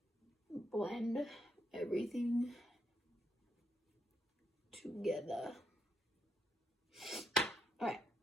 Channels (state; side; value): normal; both; correlation 0.79